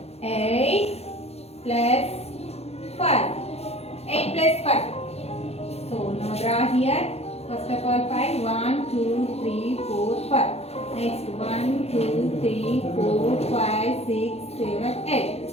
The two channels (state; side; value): late; right; 0.30 ms